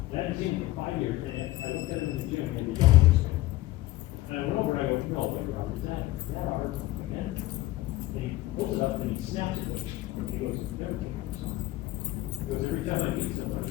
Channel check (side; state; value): right; quieter; 17.4 dB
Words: And I hadn't seen him for 5 years, and I looked at him in the gym and he had a yellow wristband. And I went over and I go, no, what, Robert, is that Robert again? And he pulls it up and he snaps it, and he goes, never take this off. He goes, every time I meet somebody,